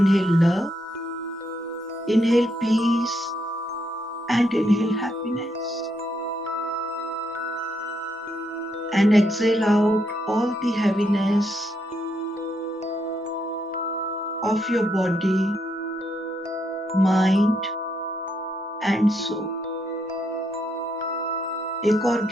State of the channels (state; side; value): normal; both; correlation 0.77